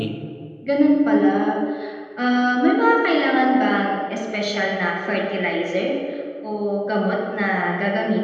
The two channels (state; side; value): identical; both; correlation 1.00